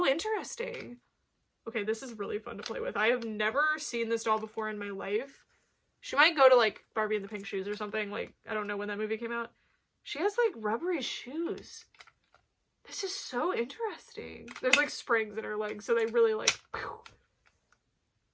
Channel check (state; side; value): identical; both; correlation 1.00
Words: interesting. Okay, this is really fun to play with. I have never seen this doll before in my life. She might go to like Barbie and the Pink Shoes or something. Like, I don't know when that movie came out. She has like rubbery shoes. This is so interesting. There's like springs in her legs, so they really like pew,